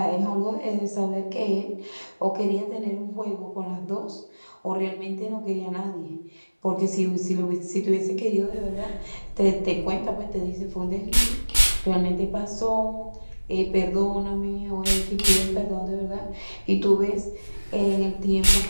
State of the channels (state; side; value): inverted; both; correlation -1.00